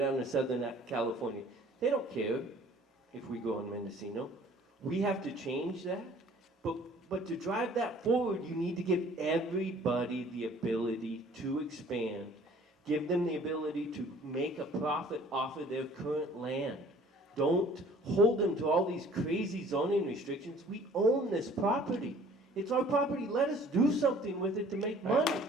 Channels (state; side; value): normal; both; correlation 0.53